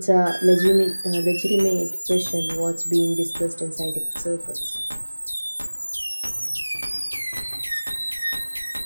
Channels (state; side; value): inverted; both; correlation -1.00